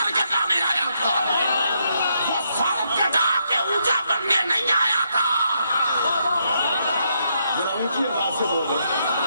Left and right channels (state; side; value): inverted; both; correlation -0.77